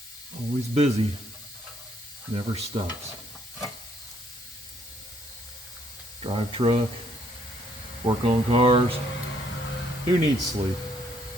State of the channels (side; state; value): both; normal; correlation 0.68